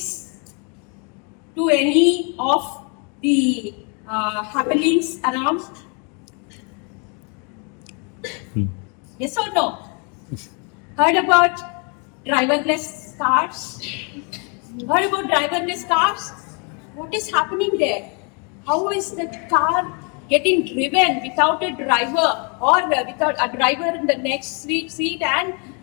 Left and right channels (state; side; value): quieter; right; 36.1 dB